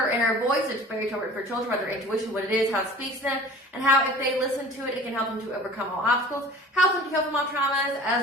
Inner Voice. It's fairy tale written for children about their intuition, what it is, how it speaks to them, and how if they listen to it, it can help them to overcome all obstacles, help them to heal from all traumas,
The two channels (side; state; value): both; normal; correlation 0.43